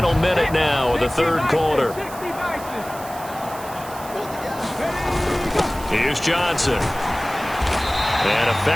minute now of the 3rd quarter. Here's Johnson. And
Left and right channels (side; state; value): right; noise; hiss, 16 dB below the sound